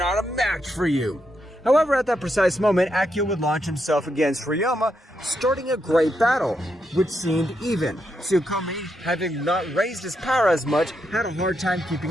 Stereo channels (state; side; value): normal; both; correlation 0.81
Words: a match for you. However, at that precise moment, Akio would launch himself against Riyoma, starting a great battle, which seemed even. Sukomi, having not raised his power as much, had a hard time